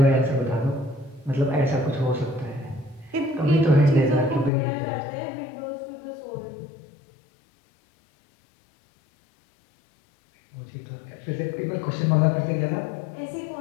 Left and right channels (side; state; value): right; drops out; at 4.5 s